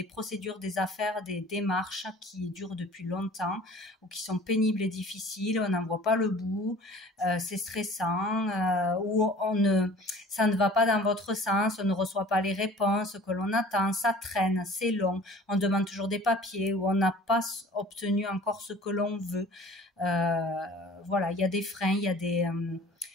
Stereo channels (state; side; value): normal; both; correlation 0.47